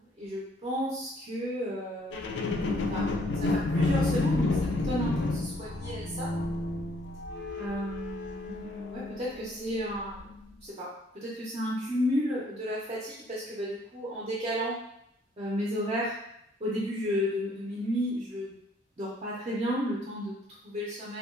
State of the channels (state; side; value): normal; both; correlation 0.64